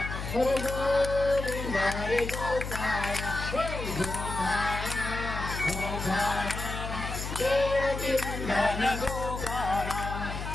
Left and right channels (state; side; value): noise; left; hum, 6 dB below the sound